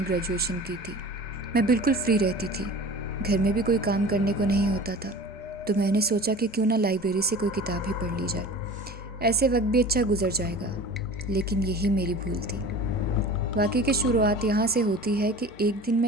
ग्रेजुएशन की थी। मैं बिल्कुल फ्री रहती थी, घर में भी कोई काम करने को नहीं होता था, तो मैंने सोचा कि क्यों ना लाइब्रेरी से कोई किताब ही पढ़ ली जाए, ऐसे वक्त भी अच्छा गुजर जाएगा। लेकिन यही मेरी भूल थी। वाक़ई की शुरुआत यहाँ से होती है कि एक दिन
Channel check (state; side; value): normal; both; correlation 0.39